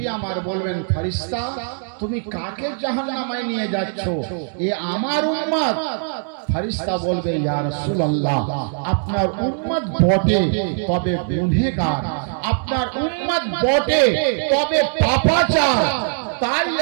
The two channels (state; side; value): silent; left; 64 dB below the other